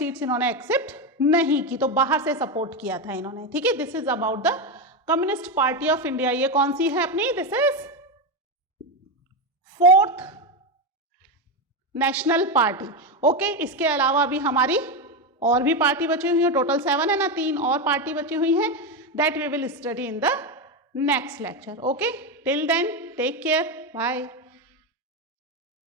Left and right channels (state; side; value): normal; both; correlation 0.11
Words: इन्होंने एक्सेप्ट नहीं की, तो बाहर से सपोर्ट किया था इन्होंने, ठीक है। This is about the communist party of India. ये कौन सी है अपनी, this is 4th national party, okay. इसके अलावा भी हमारी और भी पार्टी बची हुई है, टोटल 7 है ना, 3 और पार्टी बची हुई है, that we will study in the next lecture, okay. Till then take care, bye.